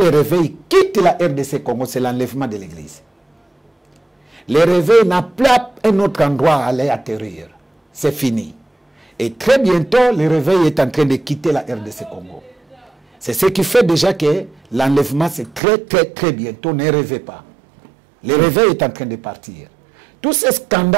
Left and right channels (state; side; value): drops out; left; at 15.6 s